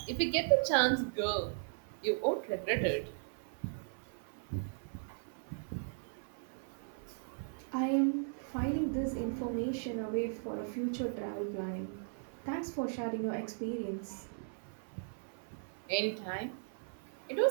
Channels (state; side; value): silent; left; 53 dB below the other